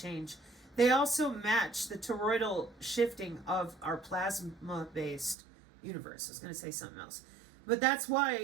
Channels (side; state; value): left; drops out; at 5.4 s